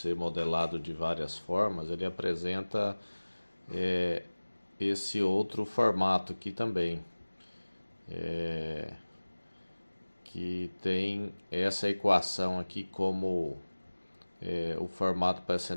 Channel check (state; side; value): inverted; both; correlation -1.00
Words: modelado de várias formas. Ele apresenta esse outro formato aqui também, que tem essa equação aqui como o formato para essa